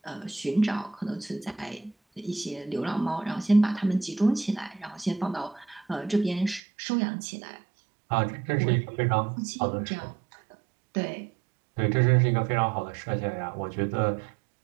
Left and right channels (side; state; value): left; drops out; at 6.6 s